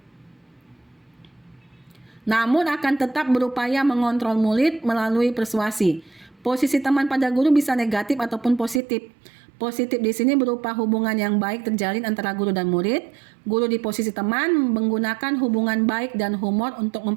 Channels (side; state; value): left; drops out; at 8.8 s